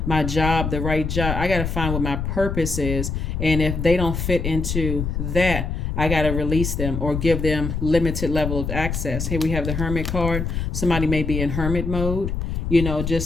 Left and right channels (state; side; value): noise; left; rumble, 3 dB below the sound